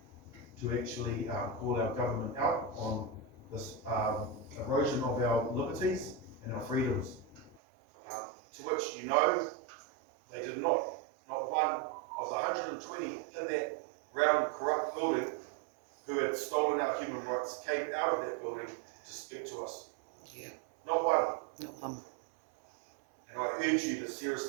to actually call our government out on this erosion of our liberties and our freedoms. To which, you know, they did not one of the 120 in that round corrupt building who had stolen our human rights came out of that building to speak to us. Yeah. Not one. Not one. And I urge you to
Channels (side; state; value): left; drops out; at 7.6 s